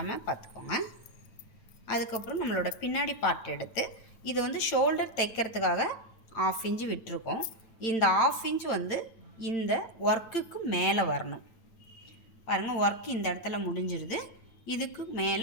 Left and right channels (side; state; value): right; late; 8.9 ms